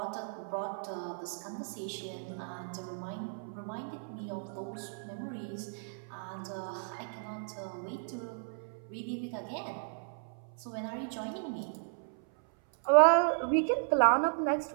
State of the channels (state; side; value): silent; left; 55 dB below the other